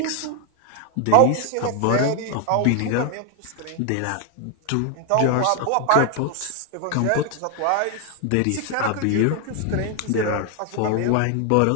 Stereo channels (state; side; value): different; both; correlation 0.00